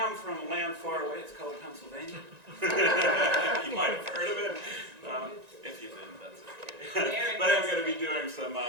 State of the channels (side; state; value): left; late; 1.9 ms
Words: from a land far away. It's called Pennsylvania. You might have heard of it. If you didn't, that's okay. But I'm going to be doing some